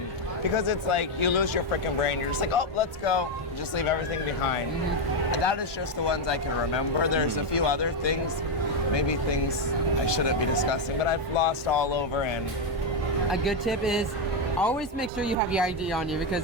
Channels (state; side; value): normal; both; correlation 0.05